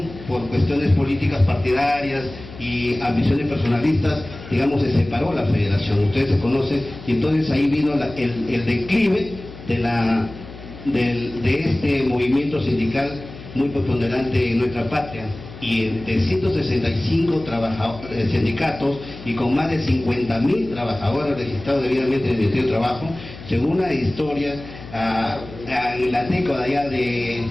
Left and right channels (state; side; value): noise; left; hum, 15 dB below the sound